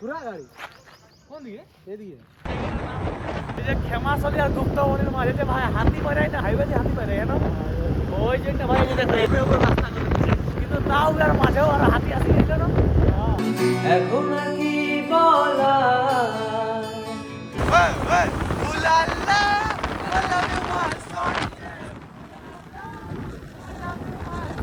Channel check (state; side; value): identical; both; correlation 1.00